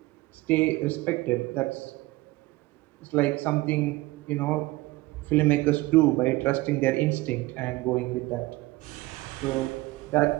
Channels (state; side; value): quieter; left; 20.1 dB